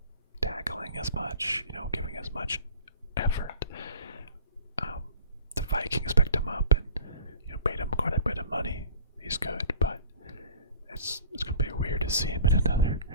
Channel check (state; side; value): inverted; both; correlation -0.43